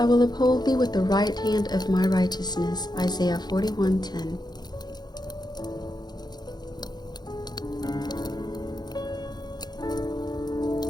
will uphold thee with the right hand of my righteousness. Isaiah 41:10.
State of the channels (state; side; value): late; right; 0.20 ms